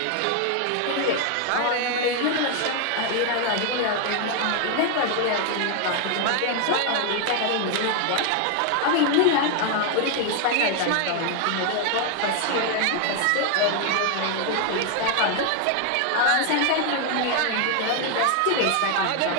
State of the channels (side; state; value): both; different; correlation 0.01